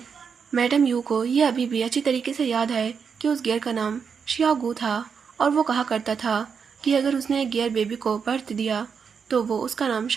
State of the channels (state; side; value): quieter; left; 6.3 dB